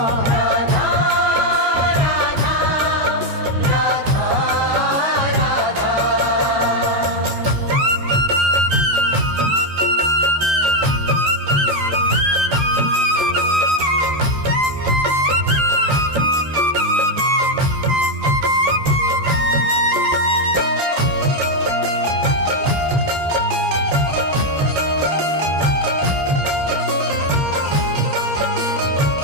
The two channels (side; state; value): left; late; 13 ms